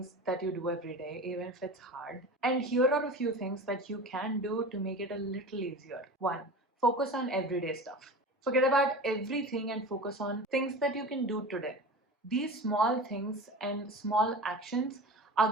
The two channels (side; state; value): both; normal; correlation 0.33